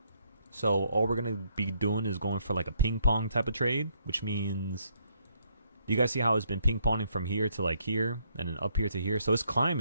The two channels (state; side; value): inverted; both; correlation -0.71